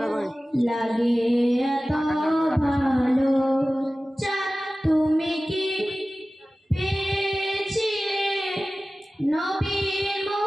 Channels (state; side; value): normal; both; correlation 0.96